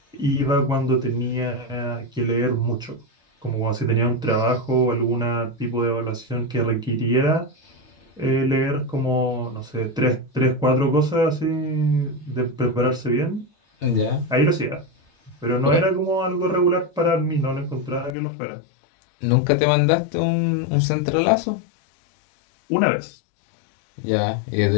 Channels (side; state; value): right; drops out; at 18.2 s